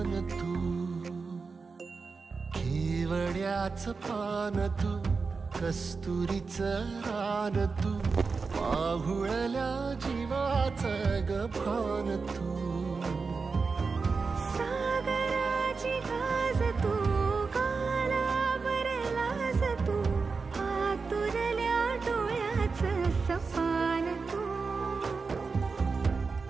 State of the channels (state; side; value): quieter; left; 4.6 dB